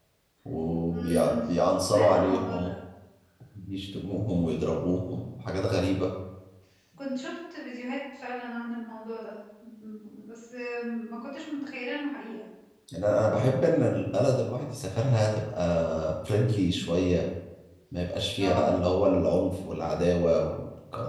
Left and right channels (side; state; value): both; identical; correlation 1.00